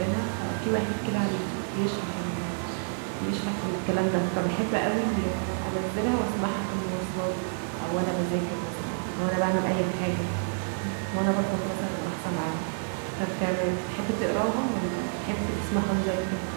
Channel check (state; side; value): silent; left; digital silence